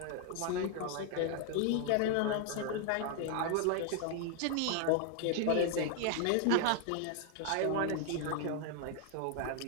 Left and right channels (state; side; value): different; both; correlation 0.00